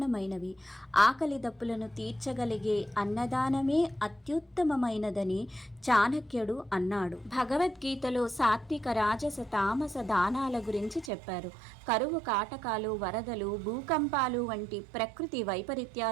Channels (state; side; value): drops out; left; at 11.1 s